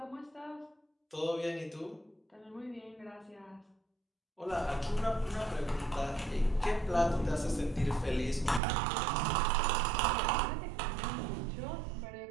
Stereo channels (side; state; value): left; drops out; at 8.6 s